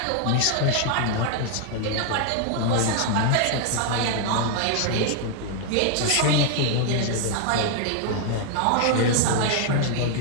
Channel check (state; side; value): different; both; correlation 0.00